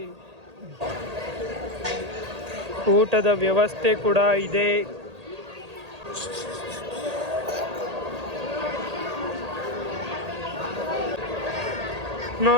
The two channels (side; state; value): left; late; 1.8 ms